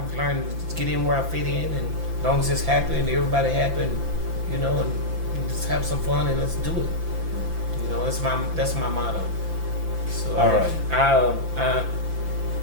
learned to get in where I fit in, and as long as it's happy and everybody happy, and, you know, and just have some fun and let's do it. You know, that's my motto. So all right.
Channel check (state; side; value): late; left; 5.9 ms